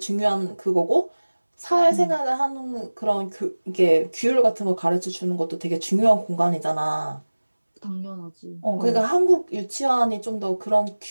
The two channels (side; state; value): both; inverted; correlation -1.00